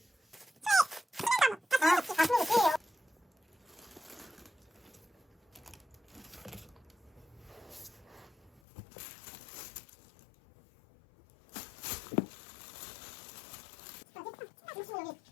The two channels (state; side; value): drops out; right; at 8.6 s